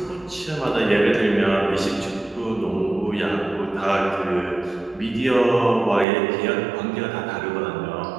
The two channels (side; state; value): left; drops out; at 6.1 s